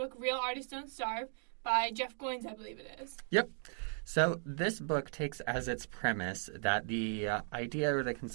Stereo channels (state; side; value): silent; left; 53 dB below the other